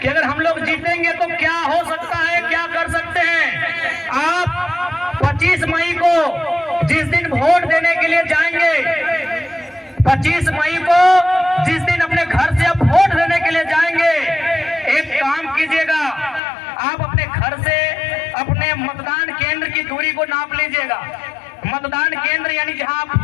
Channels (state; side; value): drops out; right; at 16.4 s